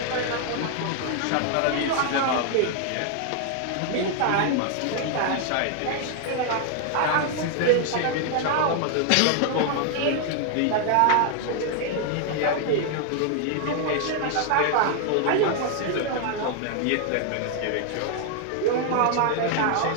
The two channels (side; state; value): both; different; correlation 0.00